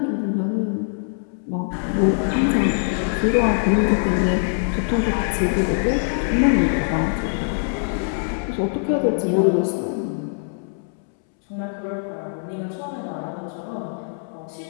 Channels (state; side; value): silent; right; 64 dB below the other